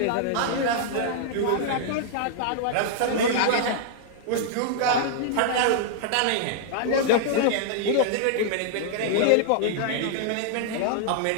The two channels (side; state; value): both; different; correlation -0.01